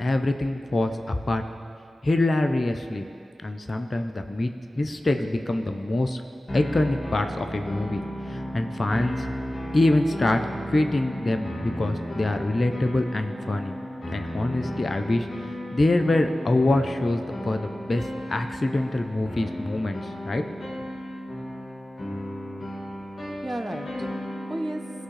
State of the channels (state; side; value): normal; both; correlation 0.96